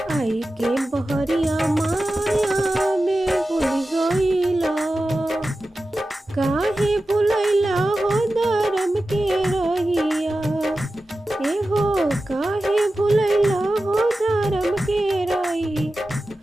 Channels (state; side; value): normal; both; correlation 0.94